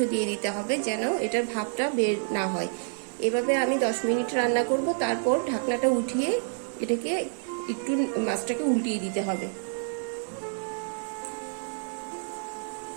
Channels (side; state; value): left; silent; digital silence